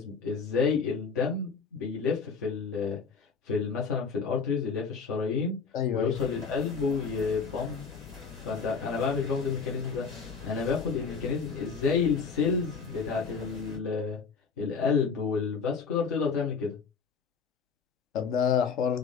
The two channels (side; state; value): right; quieter; 5.4 dB